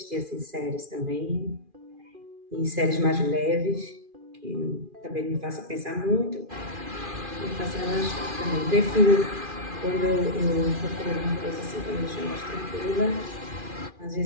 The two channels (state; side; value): late; left; 2.4 ms